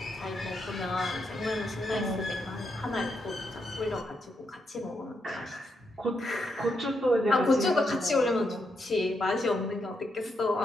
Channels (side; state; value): both; normal; correlation 0.81